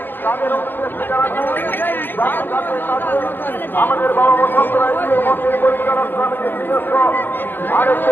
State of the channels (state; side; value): late; right; 0.091 ms